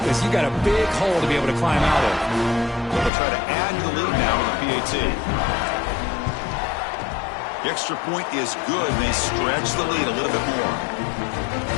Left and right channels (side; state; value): right; drops out; at 3.1 s